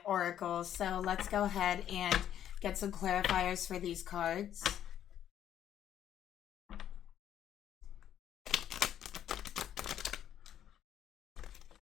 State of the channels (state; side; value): quieter; right; 10.5 dB